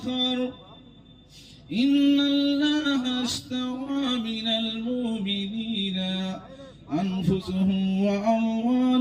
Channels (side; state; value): both; identical; correlation 1.00